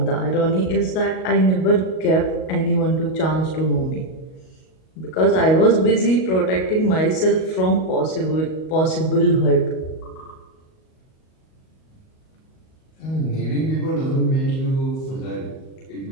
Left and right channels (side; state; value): right; late; 38 ms